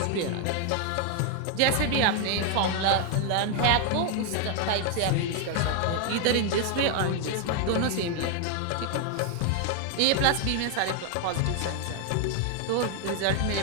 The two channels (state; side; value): different; both; correlation 0.00